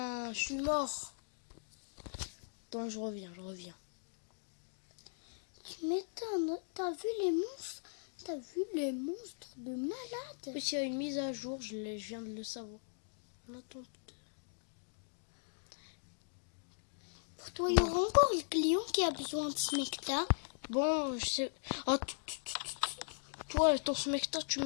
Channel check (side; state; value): right; silent; digital silence